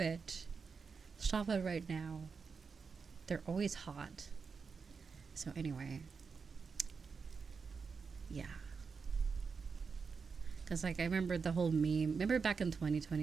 Stop it right now. They're always hot. So anyway, yeah. Because, like, I remember the whole meme. Remember back in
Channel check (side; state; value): left; quieter; 5.3 dB